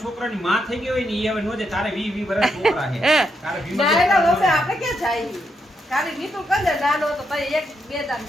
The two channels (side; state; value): both; normal; correlation 0.81